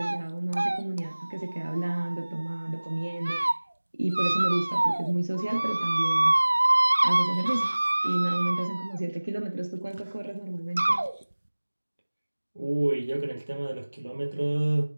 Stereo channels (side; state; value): both; inverted; correlation -1.00